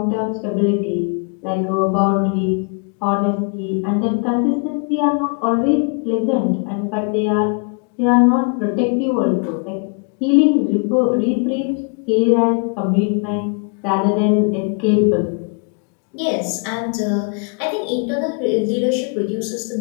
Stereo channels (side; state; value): right; quieter; 39.1 dB